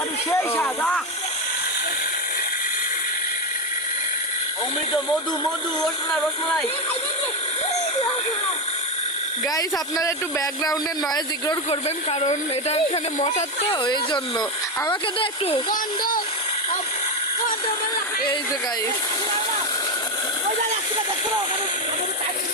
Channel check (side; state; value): both; normal; correlation 0.12